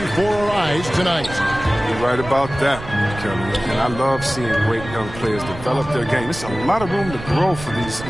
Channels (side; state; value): right; noise; rumble, 12 dB below the sound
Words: our eyes tonight. You're right about that, Kelly. And I love seeing great young players develop their game. There's a lot of room to grow for these